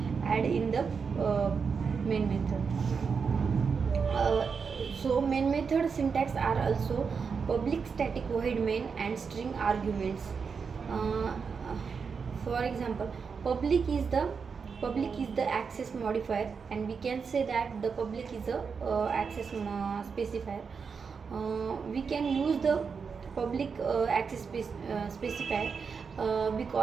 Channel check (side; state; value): left; quieter; 5.7 dB